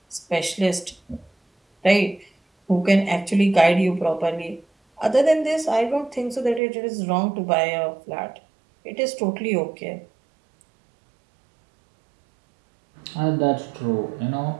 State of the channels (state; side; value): drops out; left; at 6.6 s